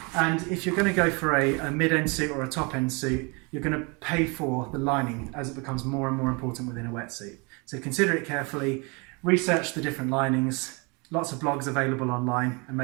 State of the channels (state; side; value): quieter; left; 29.9 dB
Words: And if you're going to go for a mid-end suit or a top-end suit, you're going to pay for the lining as it becomes more and more important within a wetsuit. So consider it carefully, research the different linings, lots of blogs available online, and